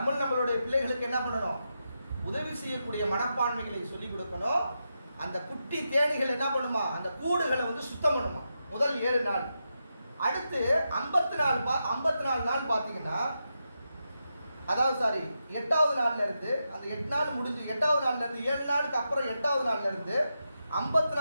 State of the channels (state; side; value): inverted; both; correlation -0.87